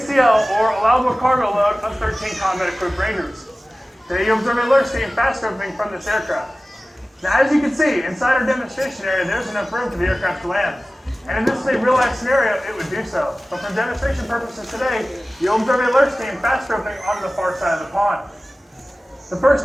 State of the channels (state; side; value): normal; both; correlation 0.97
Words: or allowable cargo load of 13 combat-equipped Rangers. Today you observe a lurch team fast roping from this aircraft. Now, as you can see, inside our demonstration area, there's enough room for the aircraft to land. And if this is a real-life scenario, it would do so. But for demonstration purposes today, you'll observe a lurch team fast roping onto the far side of the pond. The first